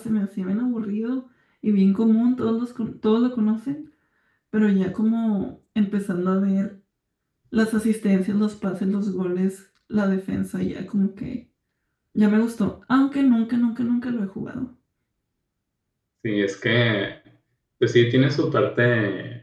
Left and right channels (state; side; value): identical; both; correlation 1.00